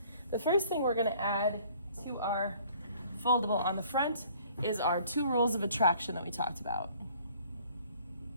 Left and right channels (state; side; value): inverted; both; correlation -0.56